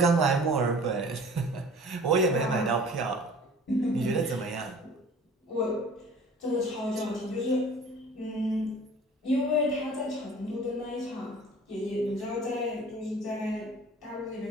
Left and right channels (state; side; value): normal; both; correlation 0.46